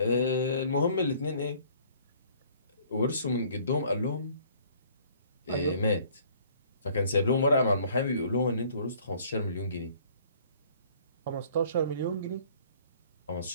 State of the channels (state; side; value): inverted; both; correlation -0.57